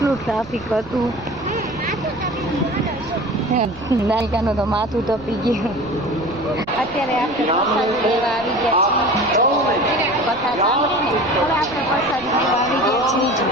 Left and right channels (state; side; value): noise; right; rumble, 19 dB below the sound